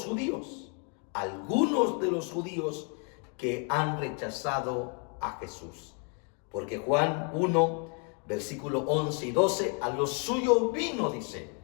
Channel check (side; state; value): right; quieter; 39.0 dB